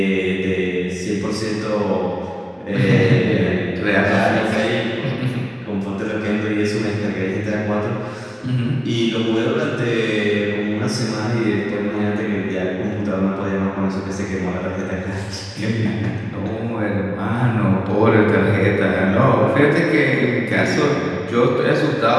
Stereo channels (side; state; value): both; identical; correlation 1.00